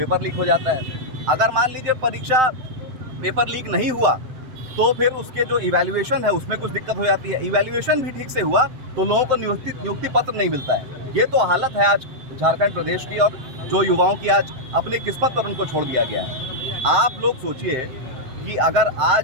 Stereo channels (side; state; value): left; late; 7.7 ms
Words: लीक हो जाता है। अगर मान लीजिए परीक्षा पेपर लीक नहीं हुआ तो फिर उसके जो इवैल्यूएशन है उसमें कुछ दिक्कत हो जाती है। इवैल्यूएशन भी ठीक से हुआ तो लोगों को नियुक्ति पत्र नहीं मिलता है। ये तो हालत है आज झारखंड प्रदेश की, और जो युवाओं की आज अपनी किस्मत पर उनको छोड़ दिया गया है। आप लोग सोचिए कि अगर